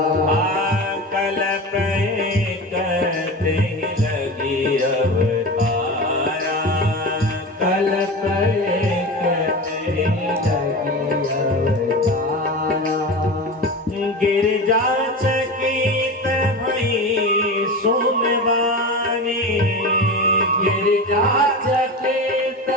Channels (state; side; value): normal; both; correlation 0.27